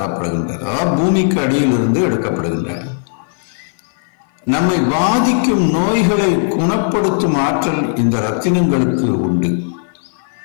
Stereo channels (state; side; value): silent; right; 57 dB below the other